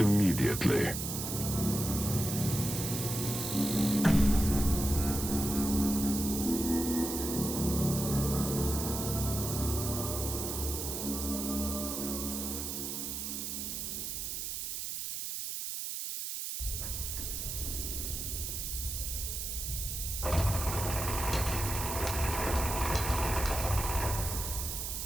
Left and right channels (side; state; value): right; noise; hiss, 4 dB below the sound